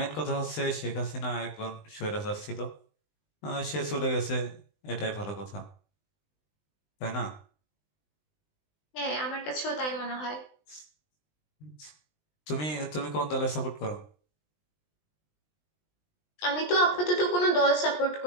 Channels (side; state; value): right; late; 20 ms